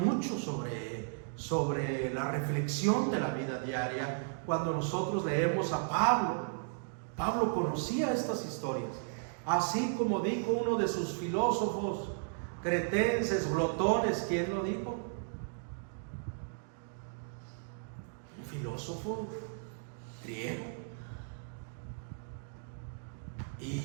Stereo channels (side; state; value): left; silent; digital silence